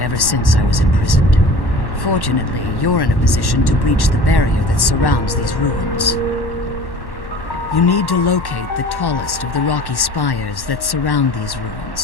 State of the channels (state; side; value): late; right; 1.1 ms